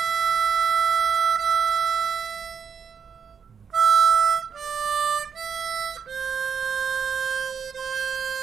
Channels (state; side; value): quieter; left; 6.6 dB